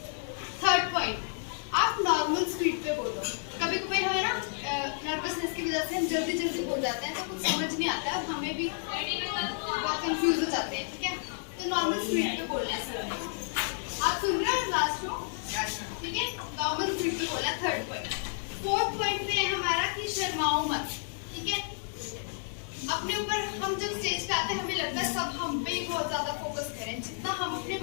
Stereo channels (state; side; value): silent; right; digital silence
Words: थर्ड पॉइंट, आप नॉर्मल स्पीड पे बोलो। कभी कभी हमें ना नर्वसनेस की वजह से हम जल्दी बोल जाते हैं, तो कुछ समझ नहीं आता है और हमें भी बहुत कंफ्यूज हो जाते हैं, ठीक है। तो नॉर्मल स्पीड पे बोलना है सर। आप सुन रहे हो लास्ट रो, ठीक है, नॉर्मल स्पीड पे बोलना। Third point. फोर्थ पॉइंट पे है हमारा कि शर्माओ मत, ठीक है। अपने ऊपर हम जब स्टेज पे आते हैं हमें लगता है सब हम पे ही बहुत ज्यादा फोकस करें, जितना हम अपने